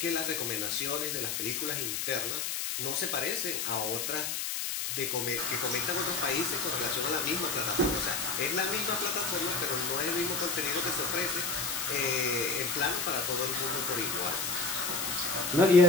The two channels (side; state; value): left; noise; hiss, 2 dB below the sound